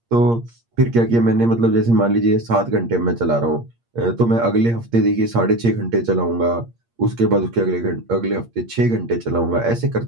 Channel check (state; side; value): late; left; 8.6 ms